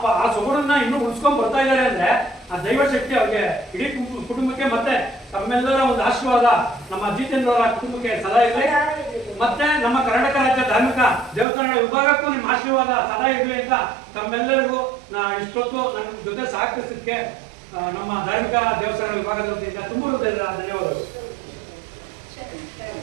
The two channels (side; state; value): left; drops out; at 11.5 s